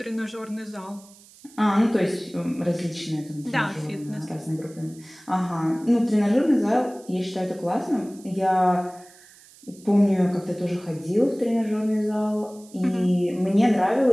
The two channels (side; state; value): right; noise; hiss, 24 dB below the sound